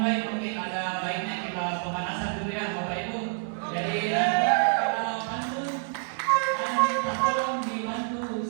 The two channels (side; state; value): left; silent; 60 dB below the other